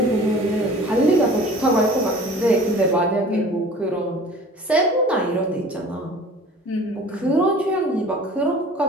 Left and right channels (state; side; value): normal; both; correlation 0.45